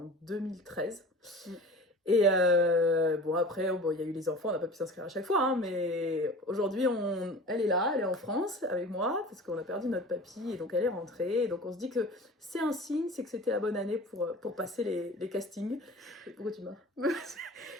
2013. Et bon, après, bon, il y a eu les enfants, on n'a pas pu s'inscrire à chaque fois, hein, mais aujourd'hui, elle est là, elle est en France avec moi, parce qu'on a perdu notre papy, et donc elle est rentrée. Et donc on se dit que c'est un signe, c'est que c'était la bonne année pour passer les castings. Et pourquoi tu m'as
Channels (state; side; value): normal; both; correlation 0.39